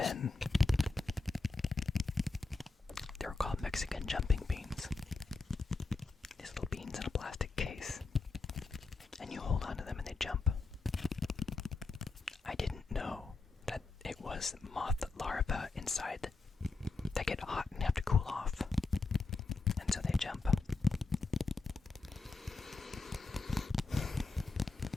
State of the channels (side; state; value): right; quieter; 3.8 dB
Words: they were called Mexican jumping beans. These little beans in a plastic case. And you hold onto them and they jump. I didn't know that it was moth larvae inside that get hot and have to cool off. And so they jump.